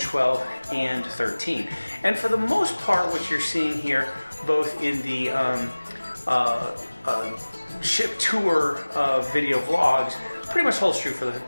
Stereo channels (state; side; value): inverted; both; correlation -1.00